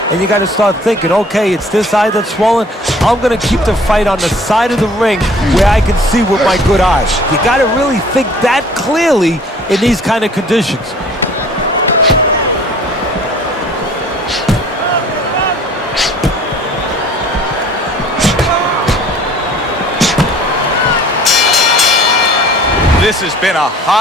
and you got to start thinking, okay, it's this eye that's swollen. I'm going to keep the fight on the side of the ring where I can see with my good eyes. You got to really think that clearly in these kind of conditions. This has been a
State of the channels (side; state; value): both; normal; correlation 0.51